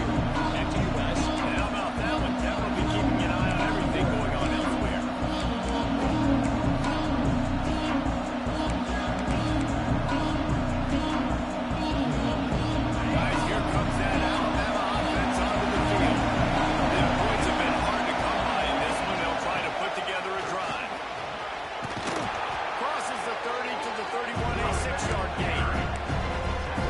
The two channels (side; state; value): both; identical; correlation 1.00